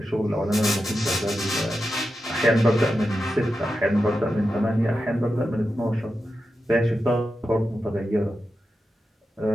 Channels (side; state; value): both; normal; correlation 0.90